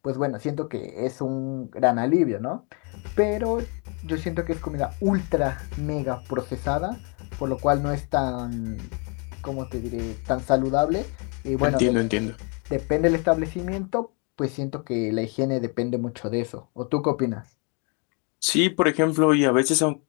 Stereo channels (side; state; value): right; quieter; 35.3 dB